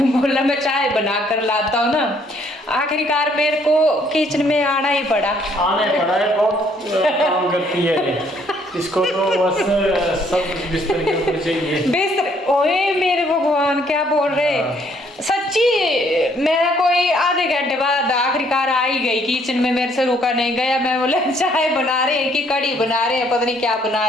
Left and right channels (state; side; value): normal; both; correlation 0.65